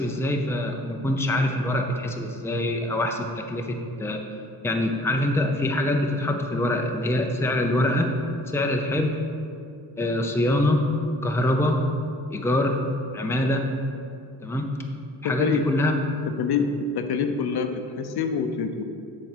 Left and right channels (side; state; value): both; normal; correlation 0.54